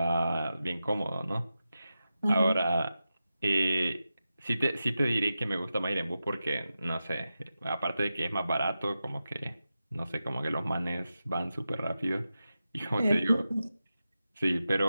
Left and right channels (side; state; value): both; inverted; correlation -0.92